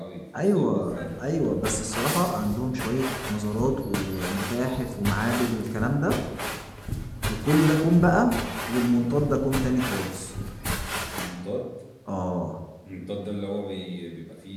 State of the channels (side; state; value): both; identical; correlation 1.00